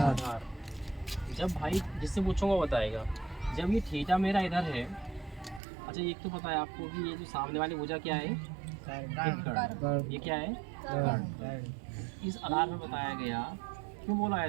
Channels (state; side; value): drops out; left; at 5.6 s